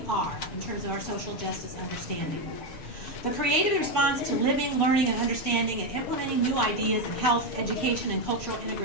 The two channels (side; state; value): right; late; 6.5 ms